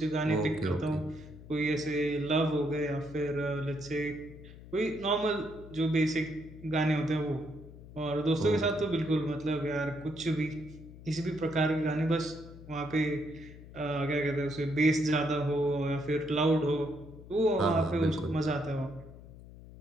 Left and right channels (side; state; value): left; noise; hum, 17 dB below the sound